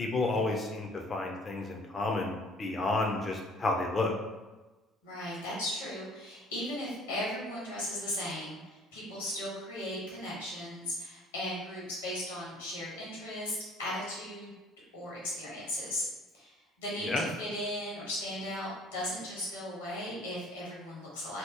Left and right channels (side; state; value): both; normal; correlation 0.54